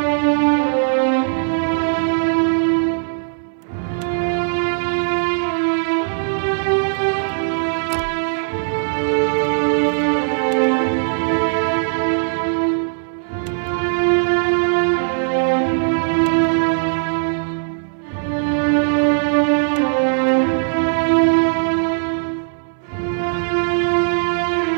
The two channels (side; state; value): left; silent; 62 dB below the other